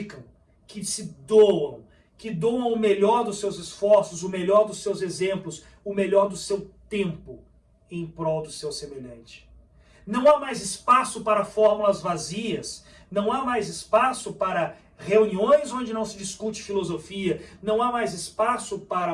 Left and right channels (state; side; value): identical; both; correlation 1.00